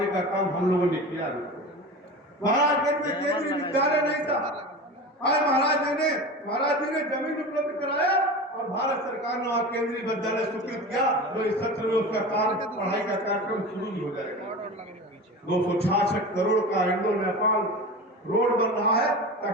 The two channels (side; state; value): both; normal; correlation 0.30